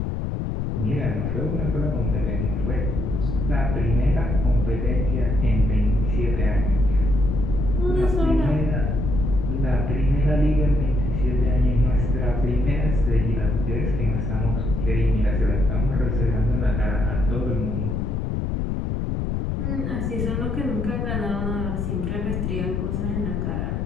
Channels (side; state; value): left; noise; rumble, 1 dB below the sound